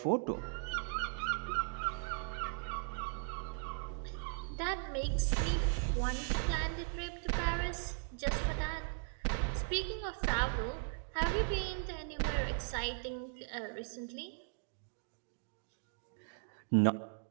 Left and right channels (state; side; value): silent; left; digital silence